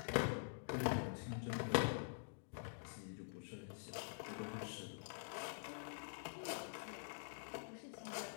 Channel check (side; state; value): right; silent; digital silence